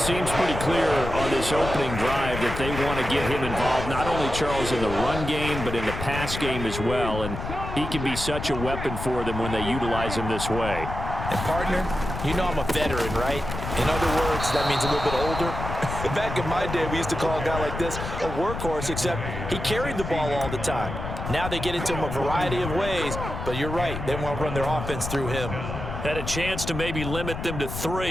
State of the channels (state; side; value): noise; left; rumble, 6 dB below the sound